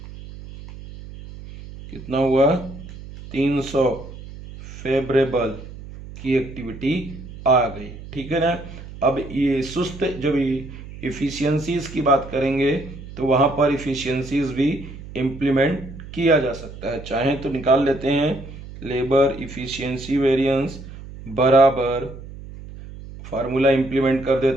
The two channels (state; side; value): noise; right; hum, 14 dB below the sound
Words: कितना हुआ 300। फेवरेबल की एक्टिविटी आ गई, ठीक है ना। अब ये सुस्त, जब इफिशियंसीज की बात करेंगे तो वहाँ पर इफिशियंसीज भी इम्प्लीमेंट किया जा सकता है। चाहे तो निकाल लेते हैं, लेबर इफिशियंसी वेरिएंस बराबर, फार्मूला इम्प्लीमेंट कर